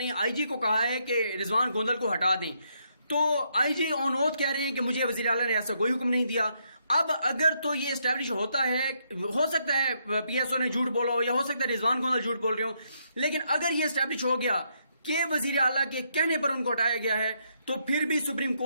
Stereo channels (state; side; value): inverted; both; correlation -0.76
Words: آئی جی کو کہا ہے کہ رضوان گوندل کو ہٹا دیں. تو آئی جی آن اوتھ کہہ رہے ہیں کہ مجھے وزیر اعلیٰ نے ایسا کوئی حکم نہیں دیا. اب اگر تو یہ اسٹیبلش ہوتا ہے، ہو سکتا ہے پی ایس او نے جھوٹ بولا ہو یا ہو سکتا ہے رضوان گوندل جھوٹ بول رہے ہوں، لیکن اگر یہ اسٹیبلش ہو گیا کہ وزیر اعلیٰ کے کہنے پر ان کو ہٹایا گیا ہے تو پھر بھی سپریم